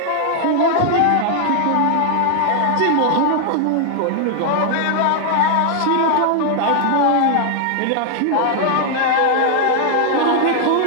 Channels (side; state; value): both; different; correlation 0.00